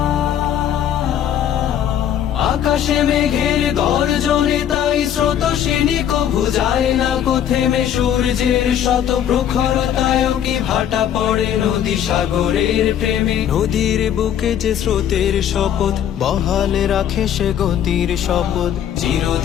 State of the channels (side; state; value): right; quieter; 9.9 dB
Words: আকাশে মেঘের গর্জনে তাই স্রোতশিনী কভু যায় না কো থেমে, সূর্যের শত প্রখরতায় কি ভাটা পড়ে নদী সাগরের প্রেমে। নদীর বুকে যে স্রোতের শপথ বহালে রাখে সে গতির শপথ,